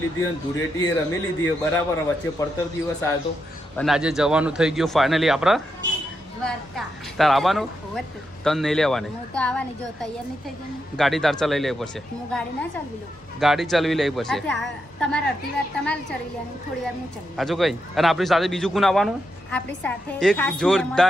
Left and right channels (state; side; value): normal; both; correlation 0.84